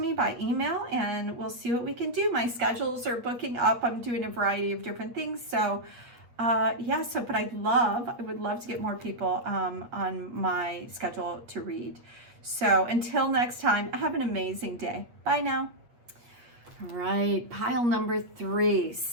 by email and we'll see what we can do. My schedules are booking up. I'm doing a variety of different things. So yeah, but I would love to get more people on my schedule to read. So until next time, have an amazing day. Bye now. All right, pile number 3.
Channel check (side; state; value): left; late; 8.4 ms